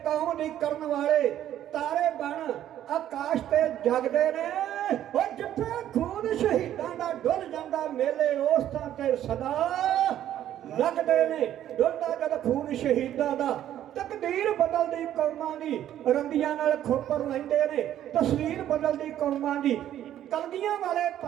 ਕੌਮ ਦੀ ਕਰਨ ਵਾਲੇ ਤਾਰੇ ਬਣ ਆਕਾਸ਼ ਤੇ ਜਗਦੇ ਨੇ, ਉਹ ਜਿੱਥੇ ਖੂਨ ਸ਼ਹੀਦਾਂ ਦਾ ਡੁੱਲ ਜਾਂਦਾ ਮੇਲੇ ਉਸ ਥਾਂ ਤੇ ਸਦਾ ਲੱਗਦੇ ਨੇ, ਡੁੱਲਦਾ ਜਦ ਖੂਨ ਸ਼ਹੀਦਾਂ ਦਾ, ਤਕਦੀਰ ਬਦਲਦੀ ਕੌਮਾਂ ਦੀ, ਰੰਦੀਆਂ ਨਾਲ ਖੋਪਰ ਲੈਂਦੇ ਨੇ, ਤਸਵੀਰ ਬਦਲਦੀ ਕੌਮਾਂ ਦੀ। ਕਲਗੀਆਂ ਵਾਲੇ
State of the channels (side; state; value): left; quieter; 11.6 dB